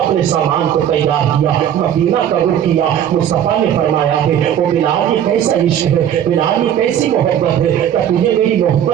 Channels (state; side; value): quieter; left; 10.0 dB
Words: اپنے سامان کو تیار کیا، مدینہ کا رخ کیا۔ مصطفیٰ نے فرمایا ہے او بلال یہ کیسا عشق ہے، بلال یہ کیسی محبت ہے، کیا تجھے میری